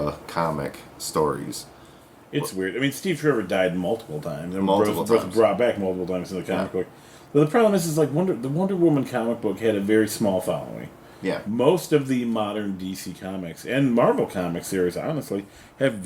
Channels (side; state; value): both; identical; correlation 1.00